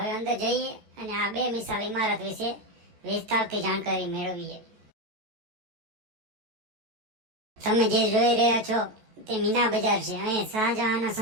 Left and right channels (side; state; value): left; late; 14 ms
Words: અંદર જઈએ અને આ બે મિસાલ ઇમારત વિશે વિસ્તારથી જાણકારી મેળવીએ. તમે જે જોઈ રહ્યા છો તે મીના બજાર છે. અહીં શાહજહાંના